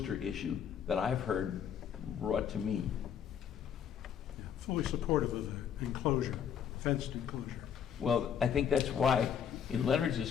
issue that I've heard brought to me. Fully supportive of the enclosure, fenced enclosure. Well, I think that's why, in Leonard's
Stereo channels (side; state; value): right; quieter; 8.2 dB